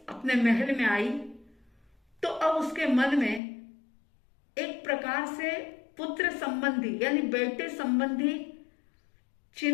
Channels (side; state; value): right; drops out; at 3.4 s